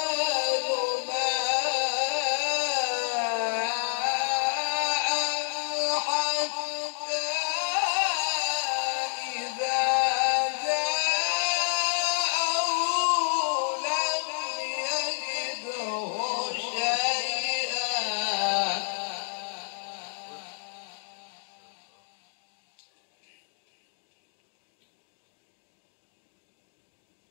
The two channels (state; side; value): silent; right; digital silence